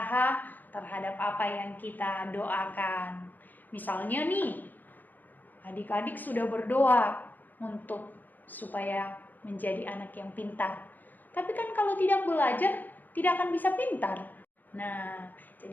terhadap apa yang kita doakan. Misalnya nih, adik-adik sudah berdoa untuk supaya menjadi anak yang pintar. Tapi kan kalau tidak belajar, tidak akan bisa pintar. Nah,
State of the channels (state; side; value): late; right; 0.085 ms